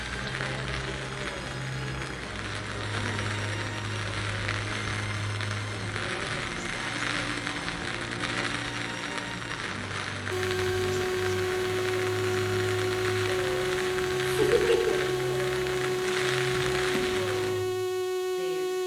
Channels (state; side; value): identical; both; correlation 1.00